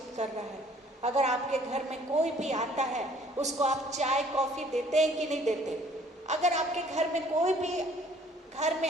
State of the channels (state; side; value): normal; both; correlation 0.57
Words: कर रहा है। अगर आपके घर में कोई भी आता है, उसको आप चाय कॉफी देते हैं कि नहीं देते? अगर आपके घर में कोई भी घर